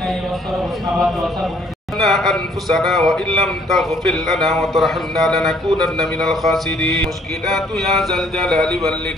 أنفسنا وإن لم تغفر لنا وترحمنا لنكونن من الخاسرين مشكلات يا ذا الجلال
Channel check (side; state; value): both; normal; correlation 0.62